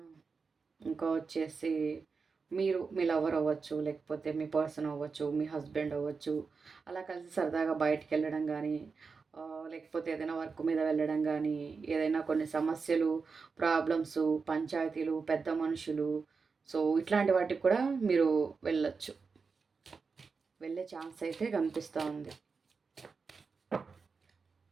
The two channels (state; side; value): quieter; left; 4.9 dB